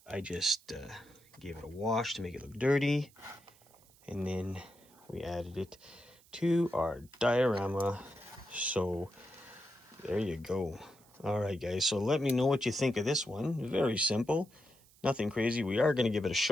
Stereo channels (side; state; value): right; noise; hiss, 28 dB below the sound